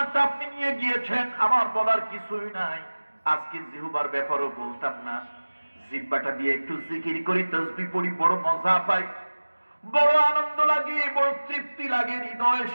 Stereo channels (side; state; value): both; inverted; correlation -1.00